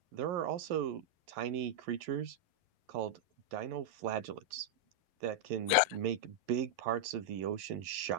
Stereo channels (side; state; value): left; late; 11 ms